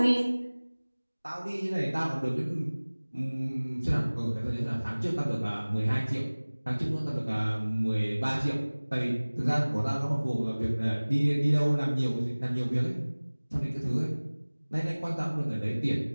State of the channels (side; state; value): both; inverted; correlation -1.00